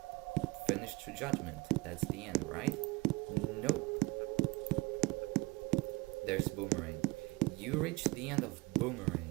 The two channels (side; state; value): left; quieter; 23.6 dB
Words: finish true judgment. That's the end, right? Nope. There's Boomerang. You reach the end of